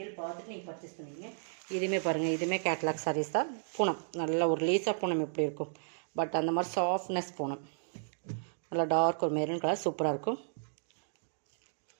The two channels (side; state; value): left; silent; digital silence